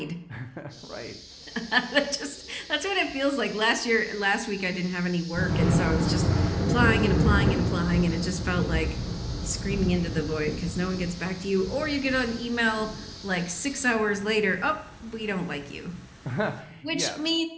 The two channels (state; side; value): identical; both; correlation 1.00